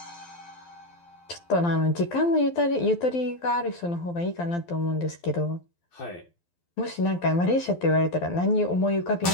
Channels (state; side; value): late; right; 12 ms